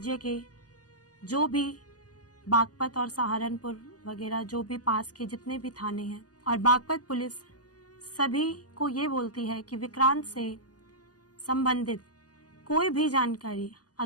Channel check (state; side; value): late; right; 0.68 ms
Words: के जो भी बागपत और सहारनपुर वगैरह जो भी पास के जितने भी थाने हैं, और बागपत पुलिस सभी को ये बोलती है कि विक्रांत से संबंधित कोई भी जानकारी